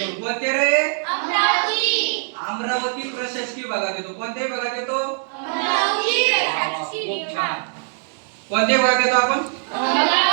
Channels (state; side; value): silent; left; digital silence